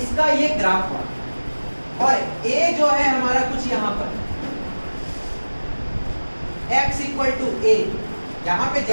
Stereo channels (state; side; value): inverted; both; correlation -1.00